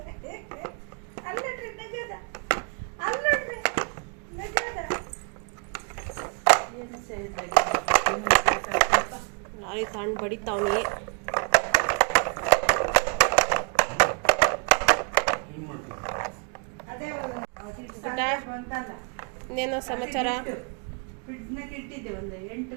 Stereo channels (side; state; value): left; quieter; 34.8 dB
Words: ಲಾರಿ ತಗೊಂಡು ಬಡಿತಾವನಿ. ಇನ್ನೇನೋ ಸಮಾಚಾರ? ಫ್ರಿಡ್ಜ್ನಾಗ ಇಟ್ಟಿದ್ದೆ, ಒಂದು 8